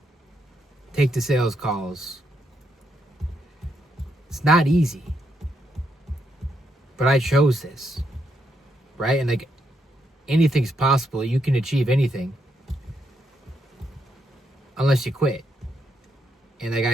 take the sales calls. It's not easy. But I chose this, right? And like anything's possible. You can achieve anything unless you quit. And like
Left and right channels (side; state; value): both; normal; correlation 0.79